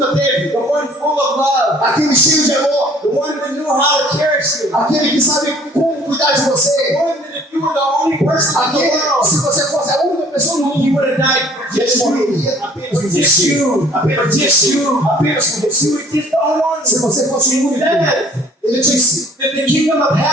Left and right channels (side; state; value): both; normal; correlation 0.54